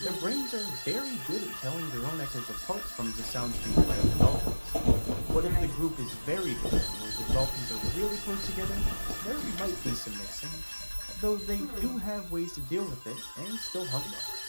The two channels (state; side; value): inverted; both; correlation -1.00